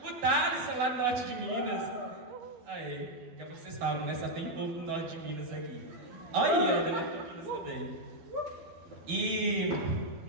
O Thales, lá do norte de Minas. Aê! Que vocês falam, né? Só tem povo do norte de Minas aqui. Olha aí, é do norte de Minas também. E...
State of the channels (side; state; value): left; late; 12 ms